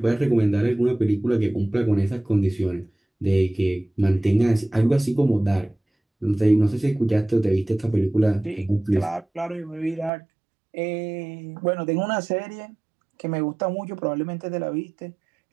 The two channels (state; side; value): drops out; left; at 10.1 s